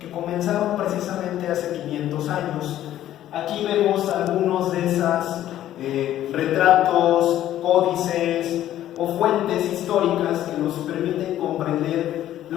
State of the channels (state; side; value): quieter; right; 12.5 dB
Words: comenzaron precisamente hace 500 años. Aquí vemos algunos de esos retratos, códices o fuentes históricas que nos permiten comprender